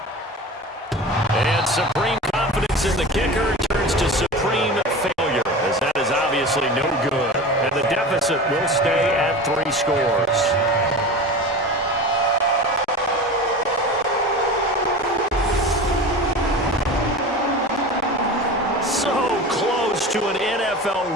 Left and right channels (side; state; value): both; normal; correlation 0.32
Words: And supreme confidence in the kicker turns to supreme failure, as that is obviously no good. And the deficit will stay at 3 scores. So close to an